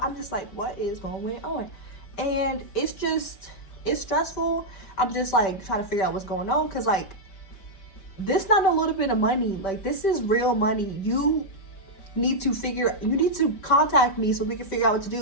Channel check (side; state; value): right; late; 5.2 ms